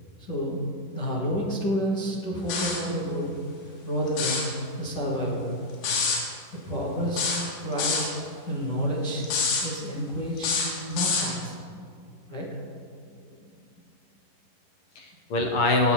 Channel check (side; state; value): right; late; 11 ms